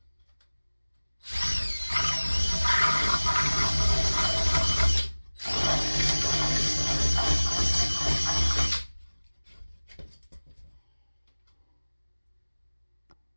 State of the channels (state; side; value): inverted; both; correlation -1.00